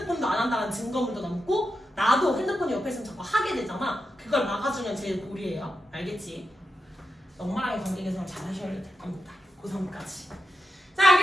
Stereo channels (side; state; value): both; normal; correlation 0.87